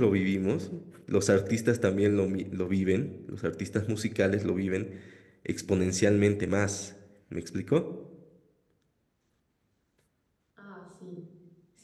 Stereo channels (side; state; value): both; identical; correlation 1.00